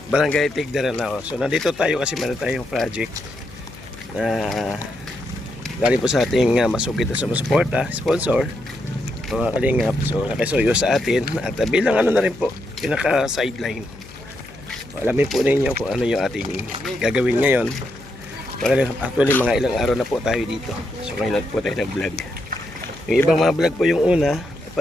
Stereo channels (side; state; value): left; noise; hum, 20 dB below the sound